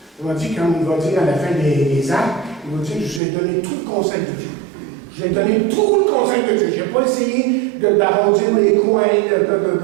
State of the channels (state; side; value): drops out; left; at 3.2 s